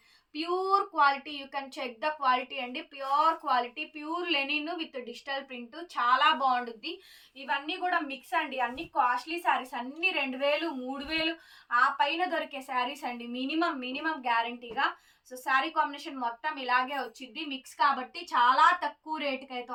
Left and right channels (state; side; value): identical; both; correlation 1.00